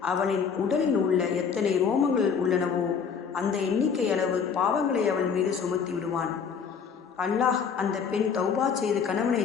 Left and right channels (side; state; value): right; quieter; 6.4 dB